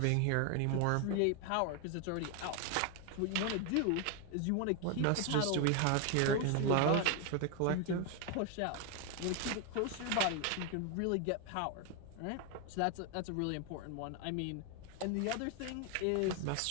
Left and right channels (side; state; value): both; different; correlation 0.01